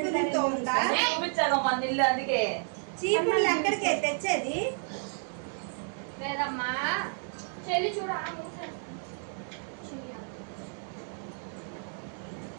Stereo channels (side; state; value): left; silent; 57 dB below the other